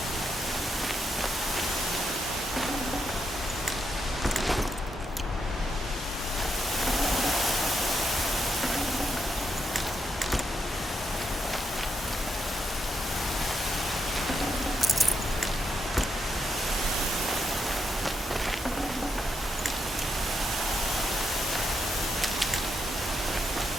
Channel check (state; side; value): normal; both; correlation 0.81